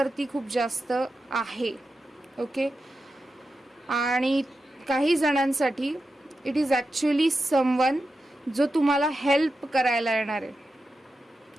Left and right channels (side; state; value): both; normal; correlation 0.90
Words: खूप जास्त आहे. ओके, आणि काही जणांसाठी इट इज ॲक्च्युली समवन जो तुम्हाला हेल्प करायला येणार आहे.